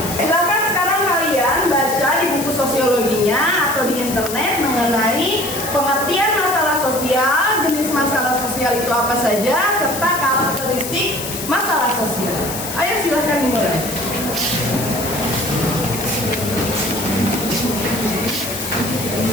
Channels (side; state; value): left; noise; hiss, 7 dB below the sound